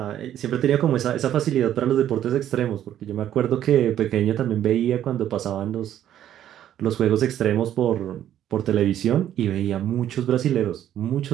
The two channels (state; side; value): quieter; left; 11.2 dB